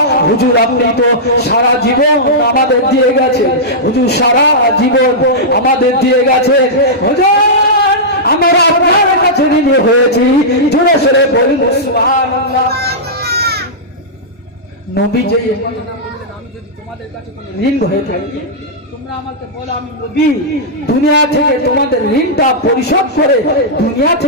হুজুর আপনি তো সারা জীবন আমাদের দিয়ে গেছেন, হুজুর সারা জীবন আমাদের দিয়ে গেছেন, হুজুর আমরা আপনার কাছে ঋণী হয়েছি। জোরে সোরে বলুন সুবহানাল্লাহ। নবী যে আমি যদি তোমাদের কাছে কোনো ঋণ হয়ে থাকি, তোমরা আমাকে বলো আমি নবী দুনিয়া থেকে তোমাদের ঋণটা পরিশোধ করে দুনিয়া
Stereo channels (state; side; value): normal; both; correlation -0.12